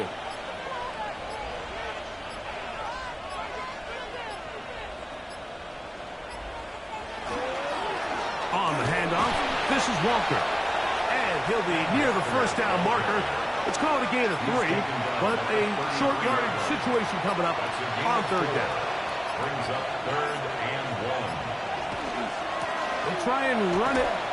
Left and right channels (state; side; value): identical; both; correlation 1.00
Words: On the handoff, this is Walker. And he'll be near the 1st down marker. It's called a gain of 3, but a short yardage situation coming up on 3rd down. Brings up 3rd and 1. They'll try and run it